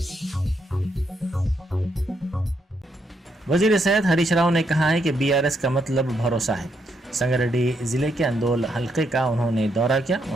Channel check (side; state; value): both; normal; correlation 0.77